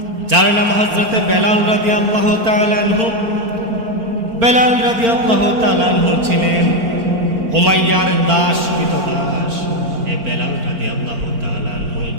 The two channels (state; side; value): late; left; 4.4 ms